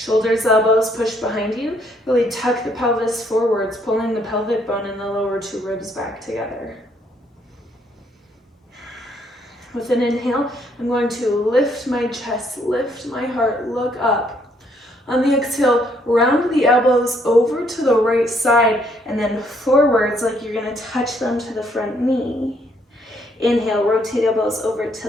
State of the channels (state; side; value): normal; both; correlation 0.69